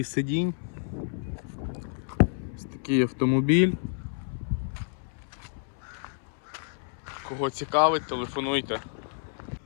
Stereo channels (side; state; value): right; silent; 58 dB below the other